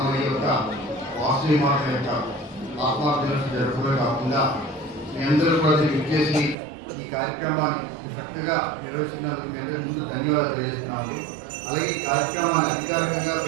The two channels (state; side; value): drops out; left; at 6.6 s